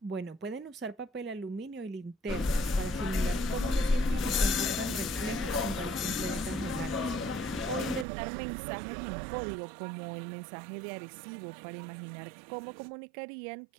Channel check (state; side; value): drops out; left; at 8.1 s